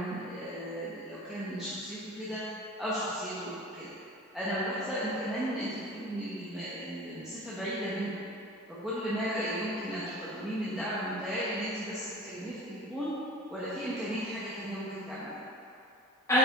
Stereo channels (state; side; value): normal; both; correlation 0.40